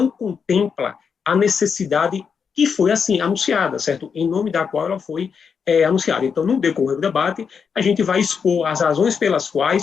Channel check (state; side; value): quieter; right; 6.3 dB